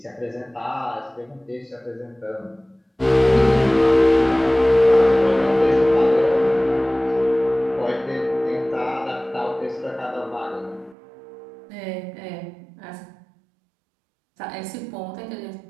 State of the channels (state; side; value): drops out; left; at 11.0 s